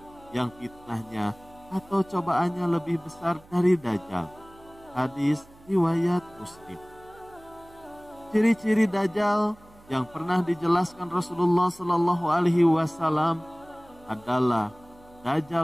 yang fitnahnya atau cobaannya lebih besar dari Dajjal. Hadis riwayat Muslim. Ciri-ciri Dajjal yang pernah dijelaskan Rasulullah Shallallahu Alaihi Wasallam adalah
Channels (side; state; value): right; noise; hum, 25 dB below the sound